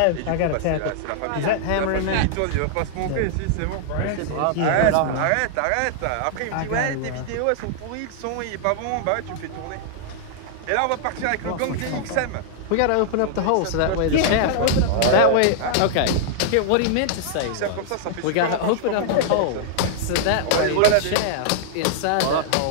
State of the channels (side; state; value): both; different; correlation -0.01